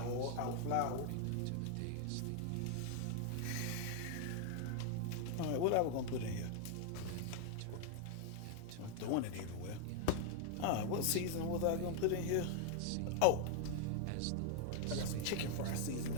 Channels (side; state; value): both; different; correlation 0.00